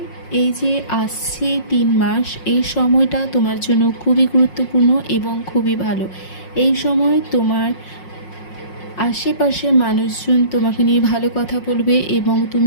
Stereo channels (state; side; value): late; right; 5.5 ms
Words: এই যে আসছে 3 মাস, এই সময়টা তোমার জন্য খুবই গুরুত্বপূর্ণ এবং খুবই ভালো। এই সময় তোমার আশেপাশে মানুষজন তোমাকে নিয়ে ভালো কথা বলবে এবং